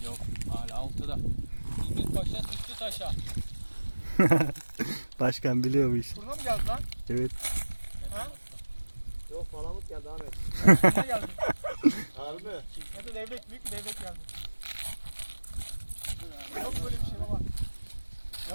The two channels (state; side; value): inverted; both; correlation -1.00